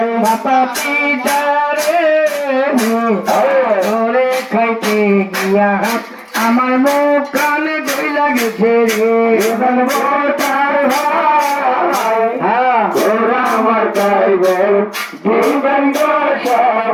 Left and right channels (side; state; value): both; identical; correlation 1.00